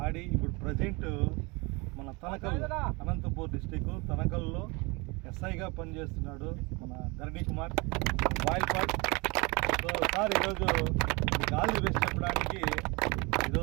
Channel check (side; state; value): left; quieter; 27.2 dB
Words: ఆడి ఇప్పుడు ప్రజెంట్ మన తనకల్ అనంతపూర్ డిస్టిక్ తనకల్లో ఎస్ఐగా పనిచేస్తున్నాడు మన ధరణి కుమార్ బాయిల్పాట్. సో సార్ ఈరోజు ఆల్ ది బెస్ట్ చెప్పడానికి